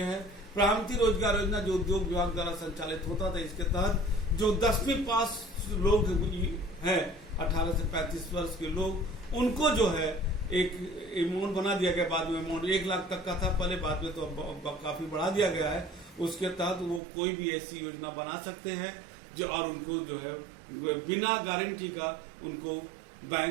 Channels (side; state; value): left; drops out; at 17.0 s